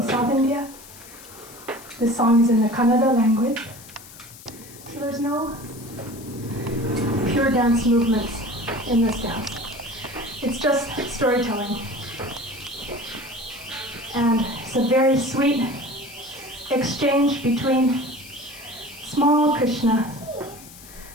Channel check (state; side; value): noise; left; hiss, 18 dB below the sound